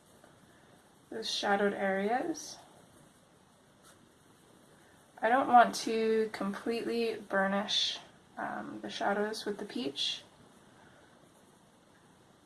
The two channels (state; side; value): identical; both; correlation 1.00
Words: those shadowed areas. I don't want to completely burnish the shadows with the peach,